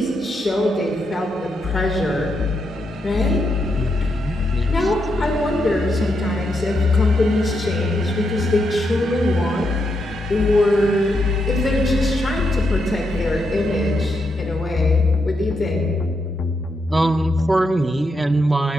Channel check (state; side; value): normal; both; correlation 0.82